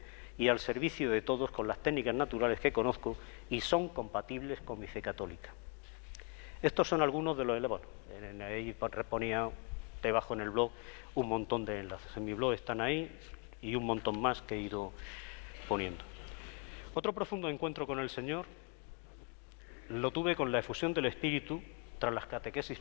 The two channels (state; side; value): quieter; right; 32.2 dB